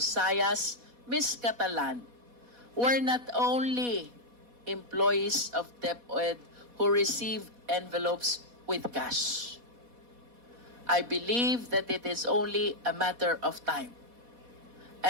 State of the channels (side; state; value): left; late; 4.1 ms